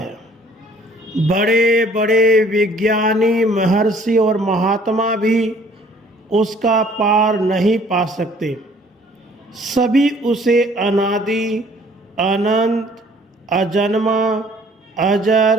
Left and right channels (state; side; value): normal; both; correlation 0.57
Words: बड़े बड़े विज्ञानी, महर्षि और महात्मा भी उसका पार नहीं पा सकते। सभी उसे अनादि, अनंत, अजन्मा,